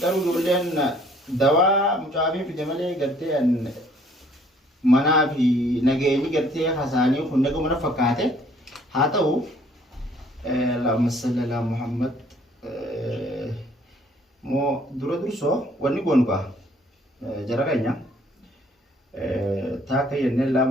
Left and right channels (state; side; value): normal; both; correlation 0.60